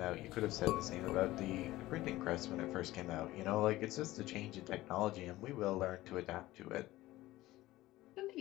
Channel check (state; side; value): quieter; right; 17.2 dB